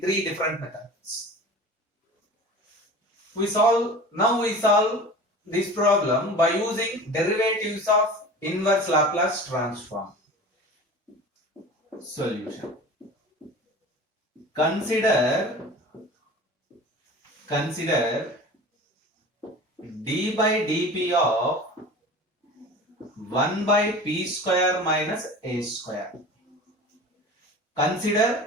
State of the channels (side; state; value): both; normal; correlation 0.37